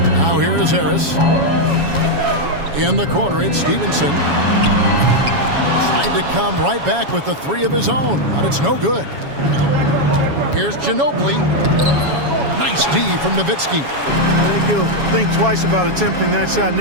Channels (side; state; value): left; late; 7.2 ms